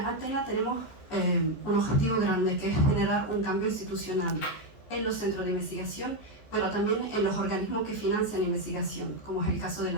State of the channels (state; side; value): late; right; 14 ms